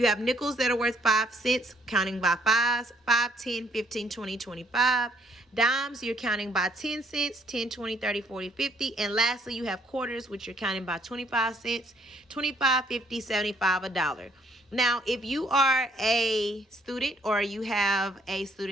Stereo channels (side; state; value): both; normal; correlation 0.66